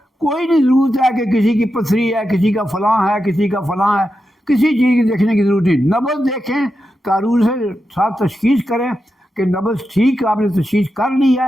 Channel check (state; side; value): normal; both; correlation 0.89